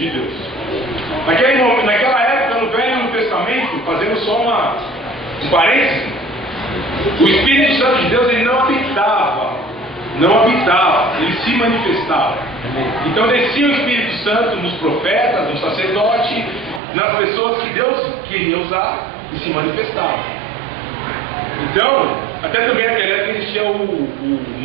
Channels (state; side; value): drops out; left; at 16.8 s